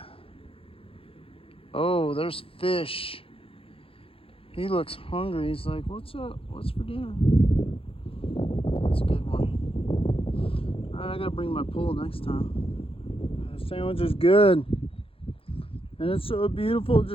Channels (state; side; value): late; right; 0.27 ms